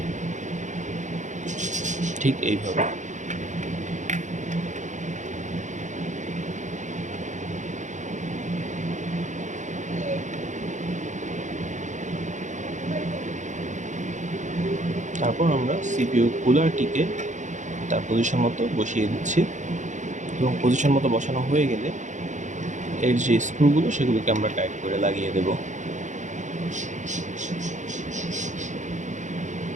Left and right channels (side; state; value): left; late; 0.35 ms